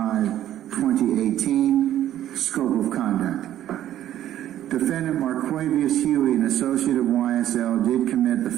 scope of conduct. Defendant Marquavius Huey, an associate of YSL, did commit the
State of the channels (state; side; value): quieter; left; 12.2 dB